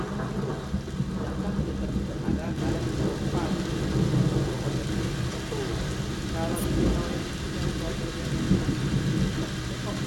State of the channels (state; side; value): identical; both; correlation 1.00